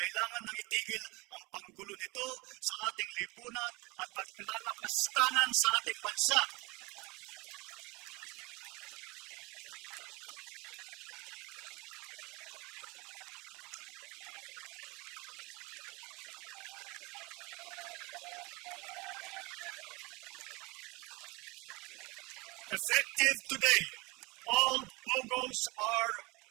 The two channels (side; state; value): left; quieter; 25.3 dB